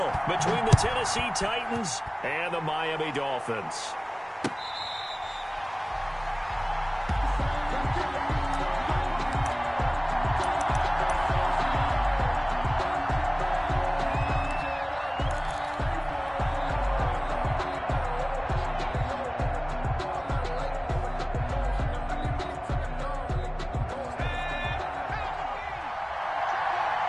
between the Tennessee Titans and the Miami Dolphins.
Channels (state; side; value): identical; both; correlation 1.00